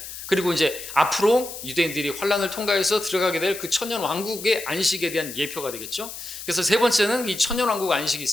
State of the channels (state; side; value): noise; left; hiss, 10 dB below the sound